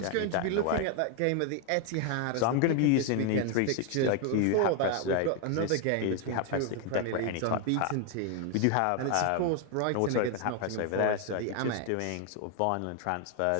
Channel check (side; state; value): both; different; correlation 0.01